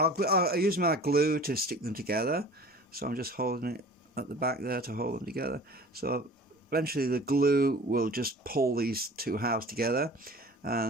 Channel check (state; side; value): normal; both; correlation 0.42